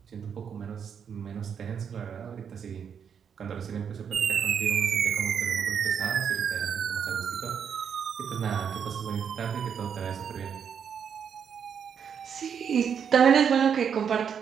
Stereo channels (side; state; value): left; quieter; 7.5 dB